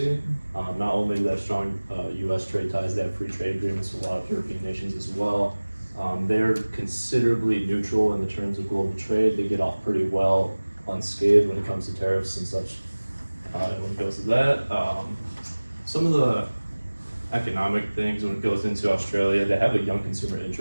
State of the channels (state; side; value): inverted; both; correlation -1.00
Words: Not only do they have strong U.S. trade ties, they have free trade agreements with a lot of European nations as well. They're considerably neutral in the terms of global trade. They get off pretty well unscathed when it comes to tariffs and such. When it goes to that, some of the economic things when it goes into Australia, they have a young consumer